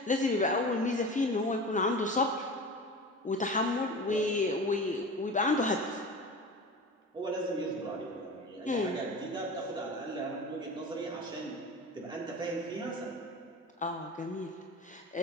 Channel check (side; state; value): both; normal; correlation 0.33